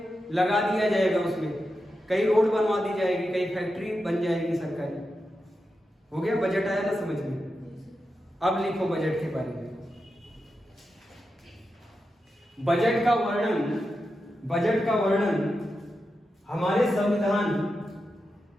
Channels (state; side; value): normal; both; correlation 0.89